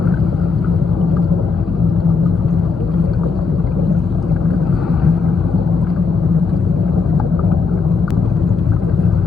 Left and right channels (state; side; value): quieter; right; 4.8 dB